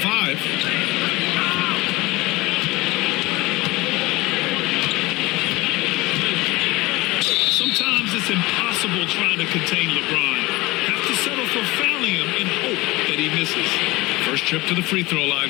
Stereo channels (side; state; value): right; quieter; 21.4 dB